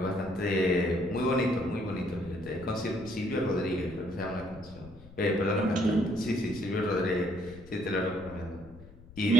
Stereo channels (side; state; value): left; noise; rumble, 19 dB below the sound